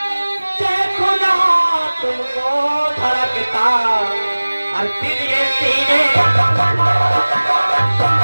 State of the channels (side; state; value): both; inverted; correlation -1.00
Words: देखो ना तुमको धड़कता और दिल ये सीने।